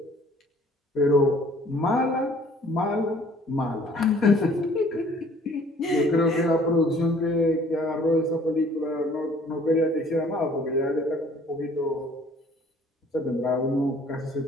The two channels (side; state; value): both; normal; correlation 0.56